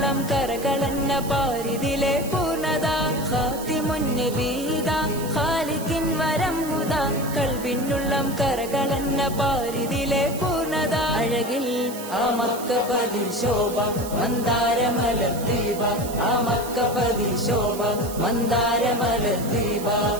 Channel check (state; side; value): noise; right; hiss, 13 dB below the sound